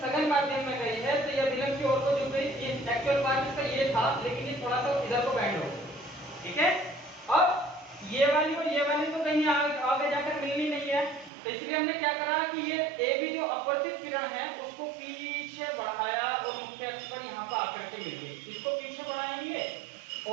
माध्यम में गई है, तो ये अभिलंब की ओर को झुक गई। ये एक्चुअल पार्ट इसका ये था, लेकिन ये थोड़ा सा इधर को बेंड हो गया। ठीक है, अब ये वाली और ये वाली तो कहीं आगे जाकर मिलनी नहीं है, तो इसलिए हमने क्या करा कि ये AB जो अपवर्तित किरण है उसको पीछे बढ़ाया और मुख्य अक्ष पर यहाँ पर आकर के मिल गई। इसको पीछे बढ़ाएंगे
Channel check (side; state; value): left; drops out; at 11.3 s